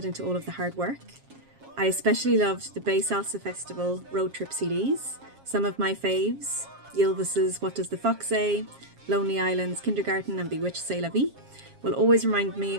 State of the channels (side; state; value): left; late; 7.4 ms